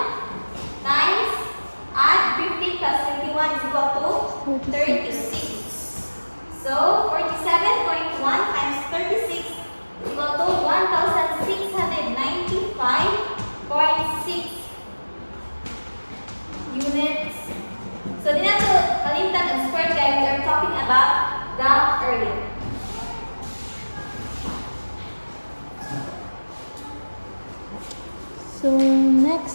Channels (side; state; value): both; inverted; correlation -1.00